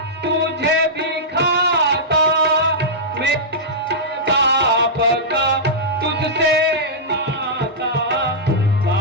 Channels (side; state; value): both; normal; correlation -0.12